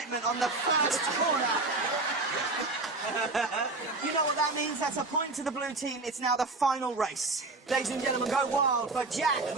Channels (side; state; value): left; quieter; 3.3 dB